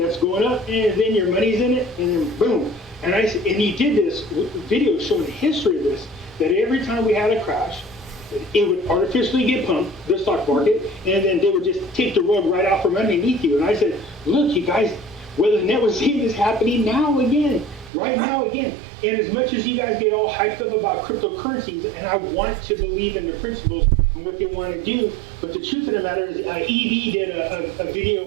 going up, and then your money's in it, and then boom. And he did this video showing the history of this, that every time we had a crash, it would artificially get pumped, the stock market, and then they would just take the rug right out from underneath you. And I said, look, you guys, whether Lynnette was seeing this happening now again, right now again. And as much as you guys get all hyped up about cryptocurrencies, and I want to believe in the principles and what they want to do, but the truth of the matter is, EB did a video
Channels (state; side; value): drops out; left; at 17.9 s